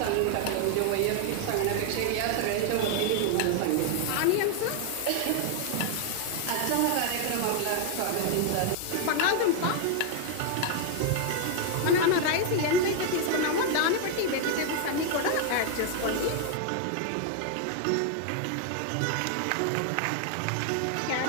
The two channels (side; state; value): both; different; correlation 0.00